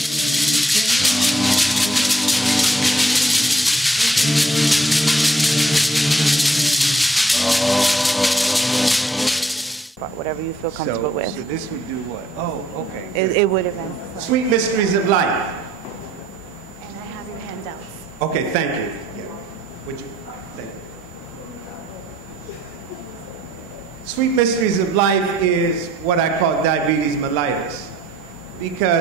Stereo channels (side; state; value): both; normal; correlation 0.64